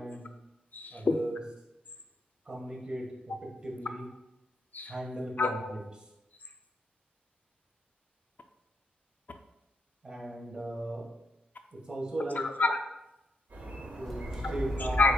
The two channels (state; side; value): normal; both; correlation 0.80